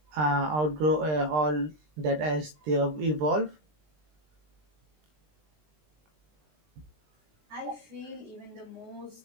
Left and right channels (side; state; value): left; late; 20 ms